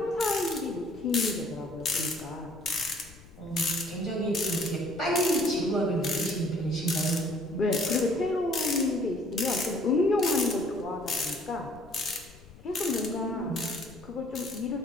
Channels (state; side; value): noise; left; rumble, 21 dB below the sound